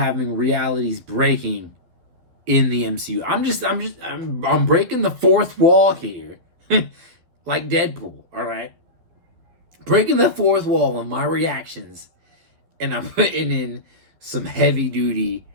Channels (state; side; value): late; left; 12 ms